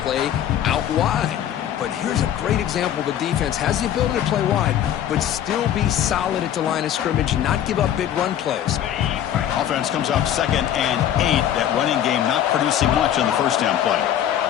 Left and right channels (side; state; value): right; quieter; 10.7 dB